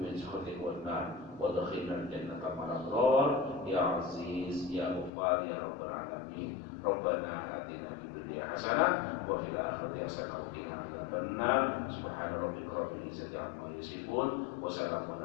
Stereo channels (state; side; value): drops out; right; at 5.1 s